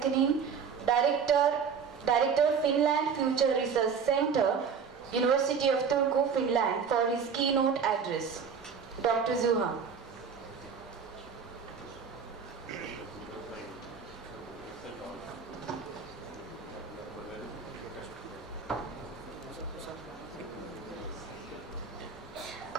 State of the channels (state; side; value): quieter; left; 6.3 dB